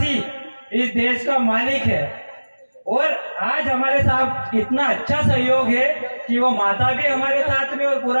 इस देश का मालिक है। और आज हमारे साथ इतना अच्छा सहयोग है कि वो माता भी हमारे साथ में और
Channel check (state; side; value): inverted; both; correlation -1.00